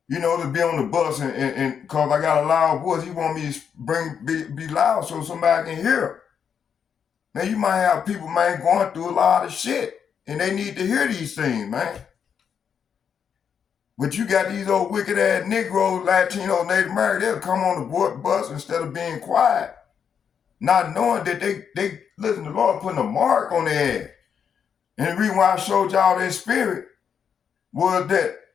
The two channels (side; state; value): right; quieter; 7.4 dB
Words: You know, to be on the bus and cause I got a loud voice, he want me to be loud so somebody can hear. Now you might have people, man, going through a lot of shit, and they need to hear these things, man. But you got these old wicked ass Negroes, Latinos, Native Americans, they'll come on the bus instead of being quiet, not knowing that they listen to the Lord putting a mark on their ass. And the reason why I showed y'all that spirit was that